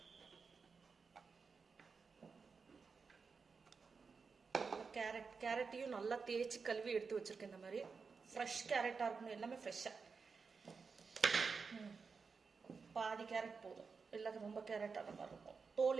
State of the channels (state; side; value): quieter; left; 5.1 dB